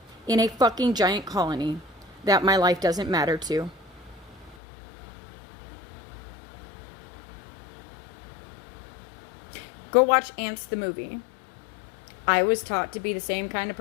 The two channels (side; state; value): right; drops out; at 4.5 s